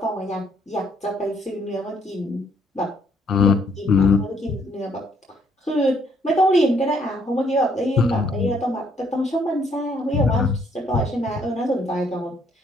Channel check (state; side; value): normal; both; correlation 0.68